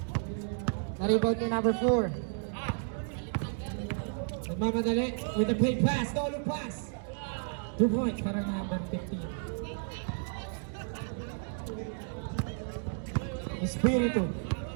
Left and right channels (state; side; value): silent; left; 56 dB below the other